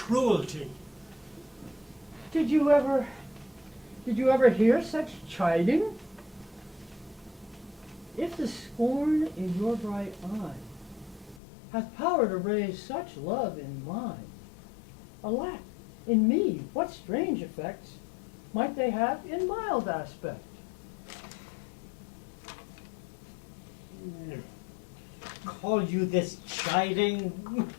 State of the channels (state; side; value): drops out; right; at 11.4 s